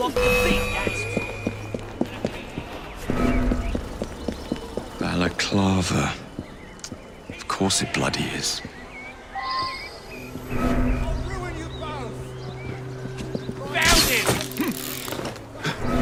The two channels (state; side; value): identical; both; correlation 1.00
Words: the beat. Balaclava. Of course it bloody is.